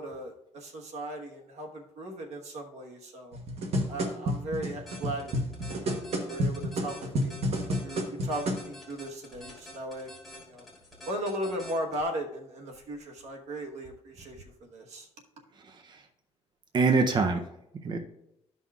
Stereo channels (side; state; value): both; normal; correlation 0.52